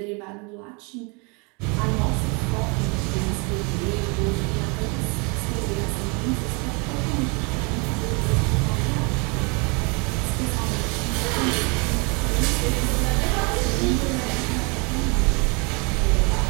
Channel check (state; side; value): quieter; left; 31.5 dB